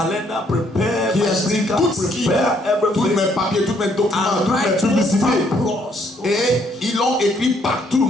prepare qui my sticker, tout ce qui tous mes papiers, tous mes documents, toutes mes publicités. Et ils l'ont écrit partout,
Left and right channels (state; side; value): normal; both; correlation 0.68